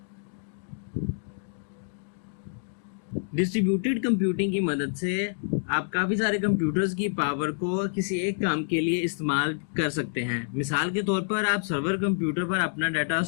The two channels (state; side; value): silent; right; digital silence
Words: डिस्ट्रीब्यूटेड कंप्यूटिंग की मदद से आप काफ़ी सारे कंप्यूटर्स की पावर को किसी एक काम के लिए इस्तेमाल कर सकते हैं। मिसाल के तौर पर आप सर्वर कंप्यूटर पर अपना डाटा